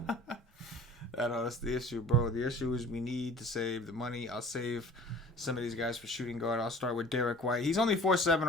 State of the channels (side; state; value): both; normal; correlation 0.46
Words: I know that's the issue, bro. The issue is we need to save the money. I'll save some of these guys for shooting guard. I'll start with Derrick White. He's only 4'7"